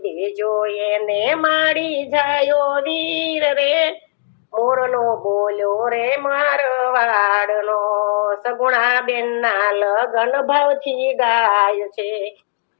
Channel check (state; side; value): silent; right; digital silence